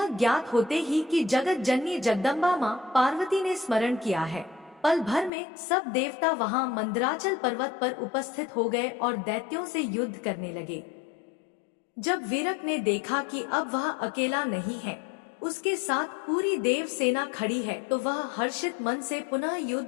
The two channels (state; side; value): drops out; right; at 5.3 s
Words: ज्ञात होते ही कि जगत जननी जगदम्बा मां पार्वती ने स्मरण किया है, पल भर में सब देवता वहां मंदराचल पर्वत पर उपस्थित हो गए और दैत्यों से युद्ध करने लगे। जब वीरक ने देखा कि अब वह अकेला नहीं है, उसके साथ पूरी देव सेना खड़ी है, तो वह हर्षित मन से पुनः